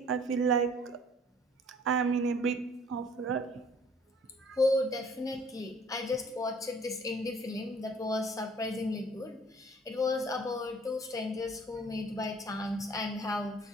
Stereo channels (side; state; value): both; normal; correlation 0.55